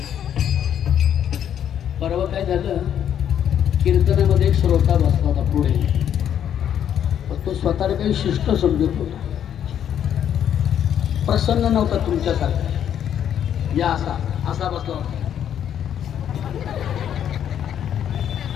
परवा काय झालं, कीर्तनामध्ये एक श्रोता बसला होता पुढे. तो स्वतःला काही शिष्ट समजत होता, प्रसन्न नव्हता तुमच्यासारखा. या असा असा बसला होता.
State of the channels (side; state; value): right; quieter; 9.6 dB